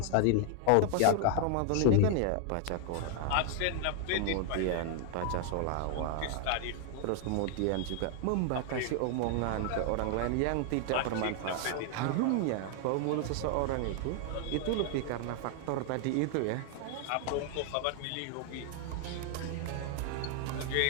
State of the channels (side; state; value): both; different; correlation 0.00